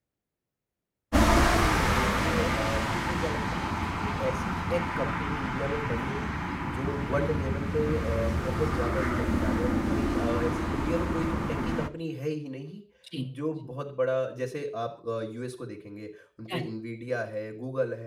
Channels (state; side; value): identical; both; correlation 1.00